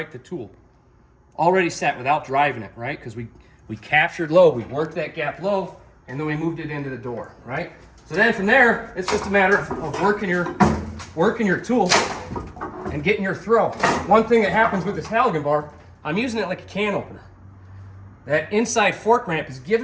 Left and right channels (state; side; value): identical; both; correlation 1.00